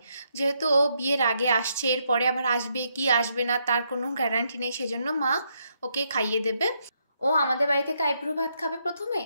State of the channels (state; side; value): inverted; both; correlation -0.77